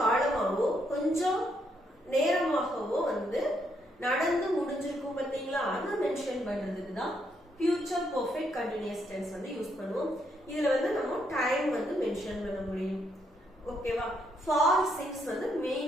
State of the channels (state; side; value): normal; both; correlation 0.75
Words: காலமாவோ கொஞ்சம் நேரமாகவோ நடந்து முடிஞ்சிருக்கும் பாத்தீங்களா, அதை மென்ஷன் பண்றதுக்கு தான் future perfect continuous tense use பண்ணுவோம். இதுல நம்ம டைம் மென்ஷன் பண்ண முடியும். ஓகேவா? ஃபார் சிக்ஸ்